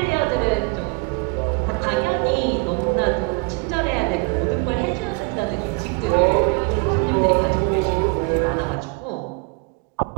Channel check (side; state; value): left; quieter; 30.4 dB